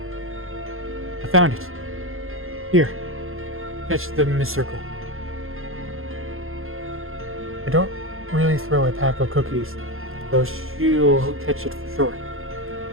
I found it. Here. Catch the 𝒔𝒂𝒂𝒏. I don't really throw a pack of cookies, though she'll catch it for sure.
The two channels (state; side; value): late; left; 0.61 ms